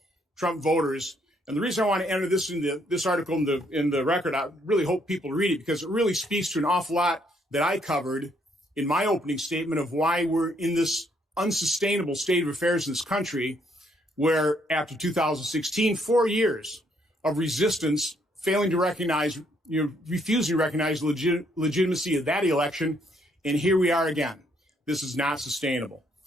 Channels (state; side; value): normal; both; correlation 0.70